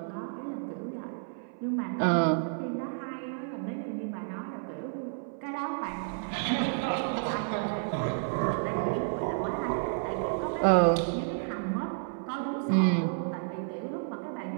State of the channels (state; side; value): silent; left; 57 dB below the other